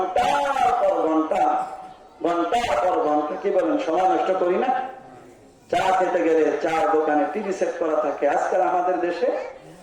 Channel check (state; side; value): identical; both; correlation 1.00